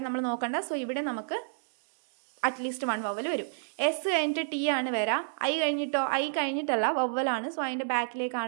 നമ്മൾ നോക്കണ്ട. സോ ഇവിടെ നമുക്ക് അറ്റ്ലീസ്റ്റ് 1 വവ്വൽ വരും. എസ് കഴിഞ്ഞിട്ട് ടി ആണ് വരാം. ഐ കഴിഞ്ഞിട്ടോ, ഐ കഴിഞ്ഞിട്ടല്ല, വവ്വലാണ്. സോ അതിൻ്റെ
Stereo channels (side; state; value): left; silent; digital silence